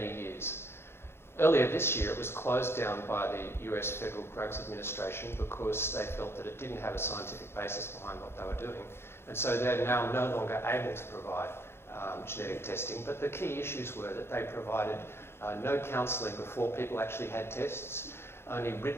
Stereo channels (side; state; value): right; late; 0.12 ms